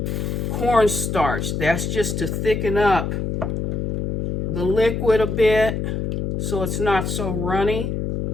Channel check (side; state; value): left; noise; hum, 2 dB below the sound